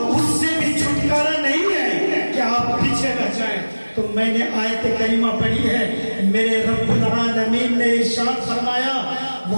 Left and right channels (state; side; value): inverted; both; correlation -1.00